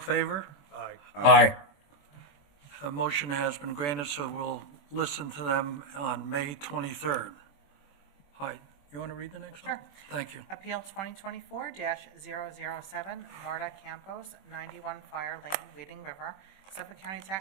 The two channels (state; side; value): late; right; 21 ms